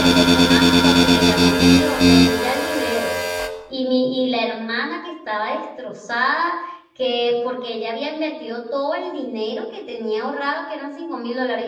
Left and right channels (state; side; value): identical; both; correlation 1.00